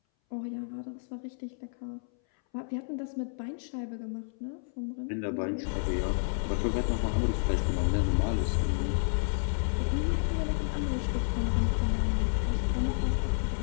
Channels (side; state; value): right; silent; 57 dB below the other